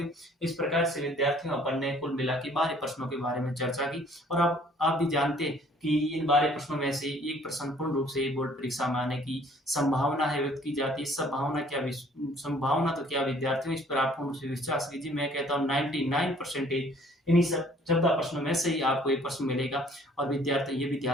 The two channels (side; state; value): both; normal; correlation 0.57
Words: इस प्रकार से विद्यार्थियों अपन ने कुल मिला के 12 प्रश्नों के बारे में चर्चा की और अब आप भी जानते हैं कि इन 12 प्रश्नों में से एक प्रश्न पूर्ण रूप से बोर्ड परीक्षा में आने की संभावना है व्यक्त की जाती है। संभावना तो क्या विद्यार्थियों, इस पर आप पूर्ण रूप से विश्वास कीजिए। मैं कहता हूँ 99% इन्हीं सब 14 प्रश्नों में से ही आपको एक प्रश्न मिलेगा। और विद्यार्थी ये भी